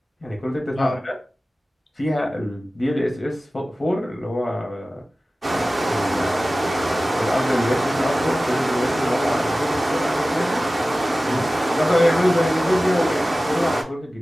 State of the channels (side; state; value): both; normal; correlation 0.96